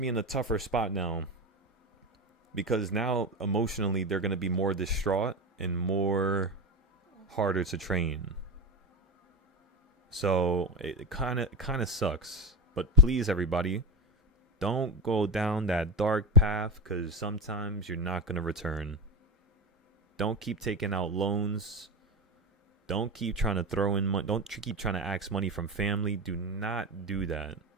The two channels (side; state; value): both; normal; correlation 0.20